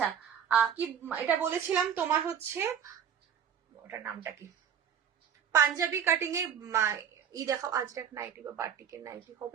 কি এটা বলেছিলাম তোমার হচ্ছে ওটার নামটা কি, পাঞ্জাবি কাটিং এ ই দেখাও। আজরাক নাইটি বা বাটিকের নাইটি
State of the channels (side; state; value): left; quieter; 8.5 dB